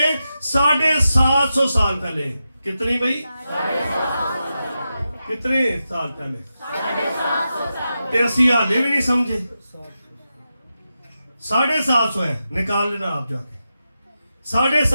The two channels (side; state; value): both; inverted; correlation -0.90